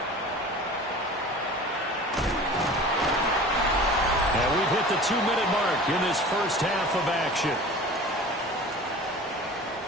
And we've hit the 2-minute mark in this first half of action.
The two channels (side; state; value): both; normal; correlation 0.39